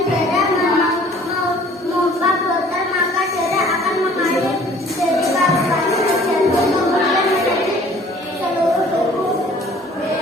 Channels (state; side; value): normal; both; correlation 0.53